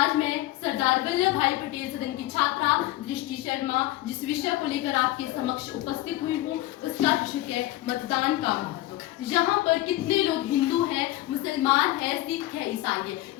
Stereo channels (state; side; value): quieter; right; 16.6 dB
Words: मैं सरदार वल्लभ भाई पटेल सदन की छात्रा दृष्टि शर्मा जिस विषय को लेकर आपके समक्ष उपस्थित हुई हूँ, उसका विषय है मतदान का महत्व। यहाँ पर कितने लोग हिंदू हैं, मुसलमान है, सिख है, ईसाई है,